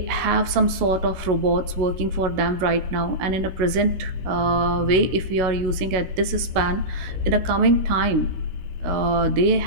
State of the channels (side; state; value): left; late; 16 ms